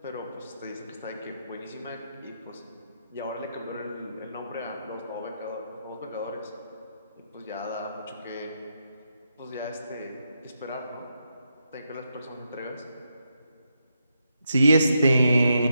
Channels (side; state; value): both; inverted; correlation -0.82